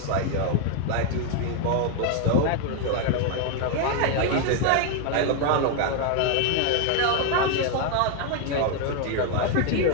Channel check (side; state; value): both; different; correlation 0.01